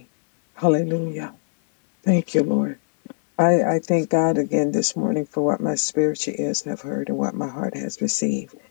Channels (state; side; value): silent; right; 61 dB below the other